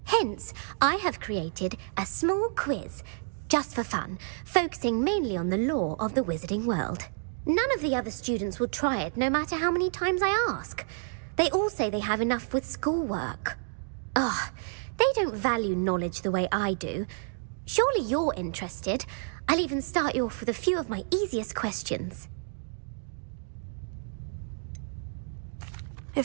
Hence, I have created a small quiz, just for fun, focusing mainly on the lore of the wizarding world. None of the other students will try it, no matter how many times I ask. They all say they have enough with schoolwork. Ugh, they don't value knowledge the way I do. Surely you're interested. I'll even start you off with a few of my easiest questions.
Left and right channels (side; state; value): left; silent; digital silence